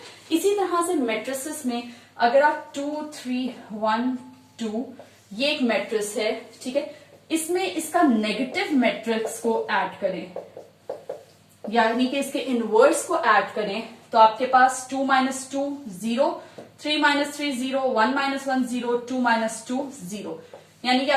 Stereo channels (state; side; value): identical; both; correlation 1.00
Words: इसी तरह से मैट्रिसेस में अगर आप 2 3 1 2, ये एक मैट्रिक्स है, ठीक है, इसमें इसका नेगेटिव मैट्रिक्स को ऐड करें, यानी कि इसके इनवर्स को ऐड करें, तो आपके पास 2 - 2 0, 3 - 3 0, 1 - 1 0, 2 - 2 0, यानी कि